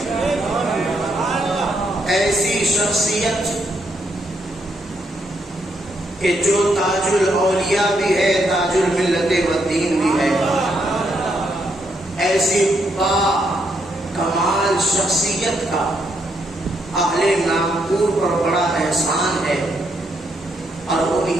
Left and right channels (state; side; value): normal; both; correlation 0.76